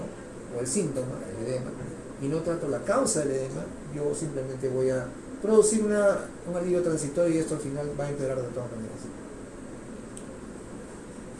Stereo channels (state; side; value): identical; both; correlation 1.00